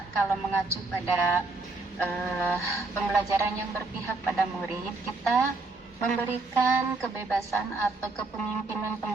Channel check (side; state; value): left; quieter; 3.5 dB